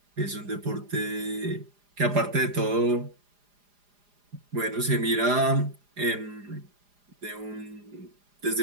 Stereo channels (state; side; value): late; left; 4.9 ms